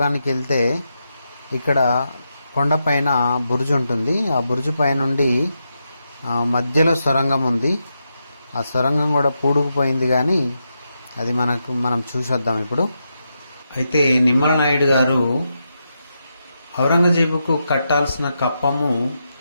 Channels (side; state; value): both; inverted; correlation -0.85